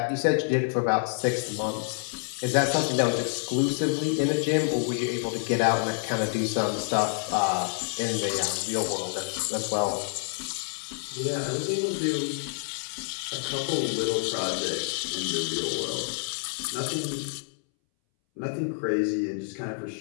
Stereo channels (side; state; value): right; silent; 60 dB below the other